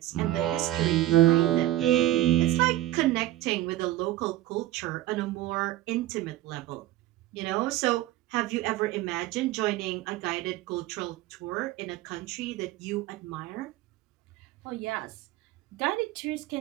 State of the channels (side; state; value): left; quieter; 15.2 dB